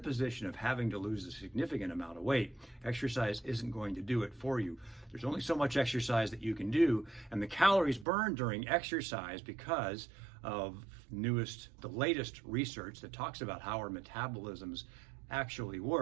of having to lose a significant amount of weight, exercise isn't going to do it for you. There's only so much exercise that you can do, and the calories burned during exercise, because of the latest research that talks about how our metabolisms actually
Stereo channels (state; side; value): drops out; left; at 8.1 s